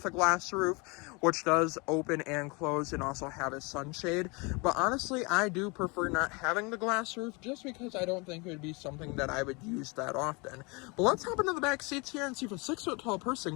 a glass roof, which does open and close and also have a sunshade. But honestly, I do prefer not having the glass roof just because I don't think it would be something that I would use that often. But let's hop into the back seats here and see if a 6-foot-tall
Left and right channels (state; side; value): quieter; right; 28.6 dB